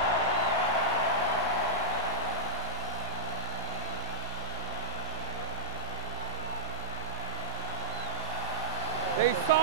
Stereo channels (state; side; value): normal; both; correlation -0.12